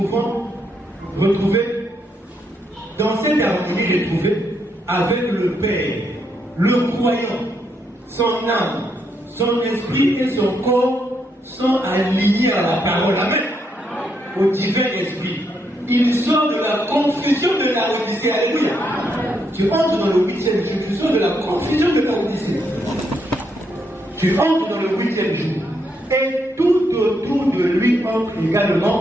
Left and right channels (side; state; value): both; normal; correlation 0.77